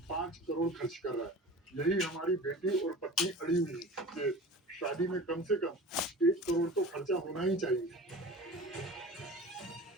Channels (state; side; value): normal; both; correlation 0.37